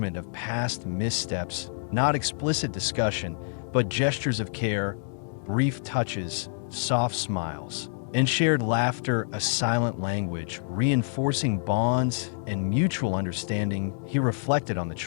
of past missteps, not explicit discussion, but gestures of care, brief touches, soft smiles, and shared laughter, a silent language, reinforcing bonds and mutual understanding. He reflected on the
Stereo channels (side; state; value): right; silent; digital silence